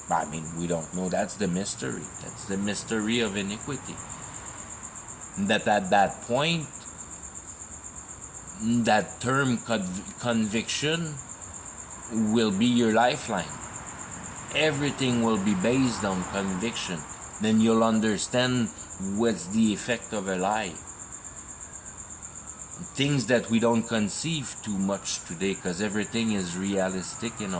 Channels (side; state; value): both; identical; correlation 1.00